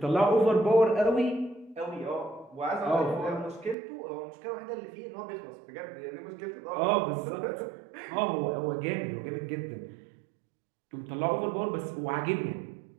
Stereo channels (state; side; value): drops out; left; at 3.8 s